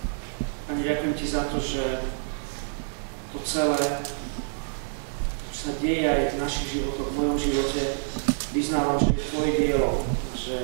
Pane, ďakujem Ti za to, že to celé, čo sa deje aj v našich životoch, v mojom živote, vyznávam, že je Tvoje dielo, že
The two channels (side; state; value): left; silent; digital silence